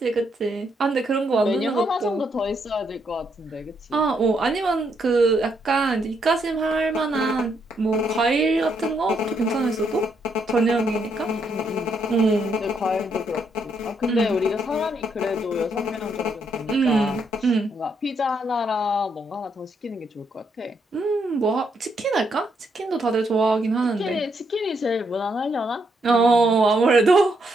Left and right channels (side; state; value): both; normal; correlation 0.76